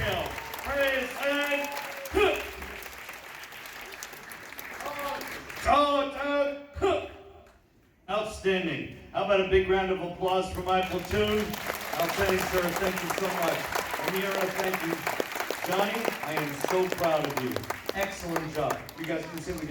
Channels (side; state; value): both; identical; correlation 1.00